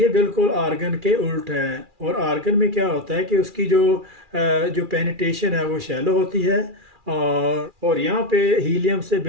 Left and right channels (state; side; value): late; left; 2.4 ms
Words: बिल्कुल आर्गन के उल्ट है। और आर्गन में क्या होता है कि उसकी जो पेनिट्रेशन है वो शैलो होती है, और यहाँ पे हीलियम से